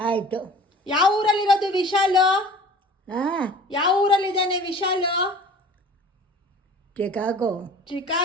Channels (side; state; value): both; normal; correlation 0.45